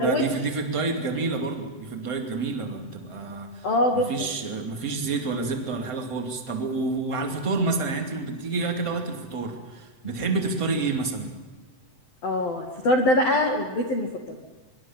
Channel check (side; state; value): right; late; 7.8 ms